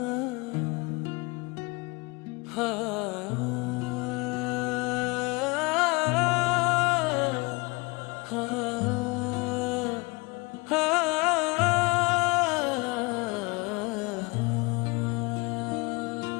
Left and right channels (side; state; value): right; quieter; 26.5 dB